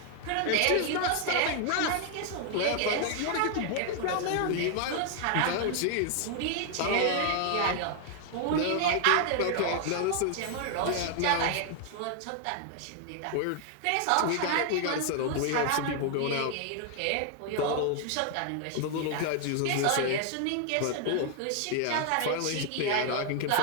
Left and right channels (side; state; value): both; different; correlation 0.00